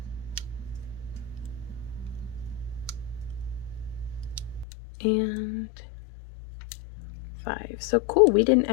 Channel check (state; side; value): drops out; right; at 4.7 s